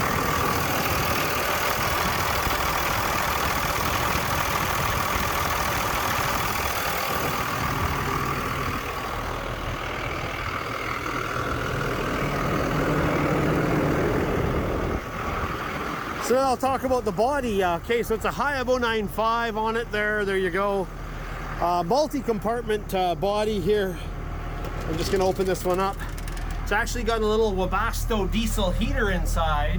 So now I'll talk about the body. Okay, so it's a HIAB 095 on it there. There you go. Multi-compartment body here. I'm just gonna open this one up. It's actually got a little Webasto diesel heater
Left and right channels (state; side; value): identical; both; correlation 1.00